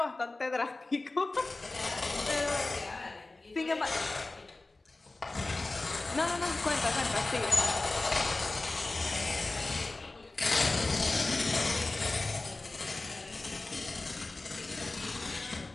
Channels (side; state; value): right; quieter; 3.1 dB